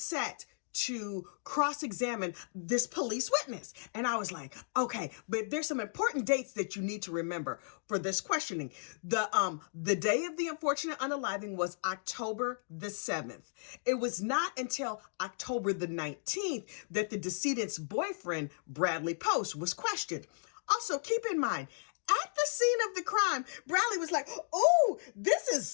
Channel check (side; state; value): right; silent; digital silence